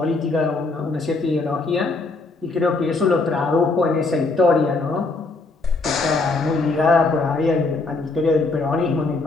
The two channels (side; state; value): right; quieter; 3.6 dB